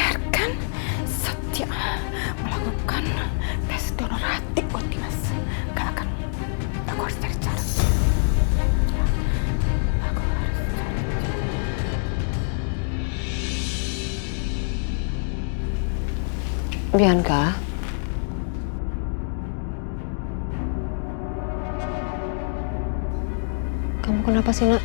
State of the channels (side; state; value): right; silent; digital silence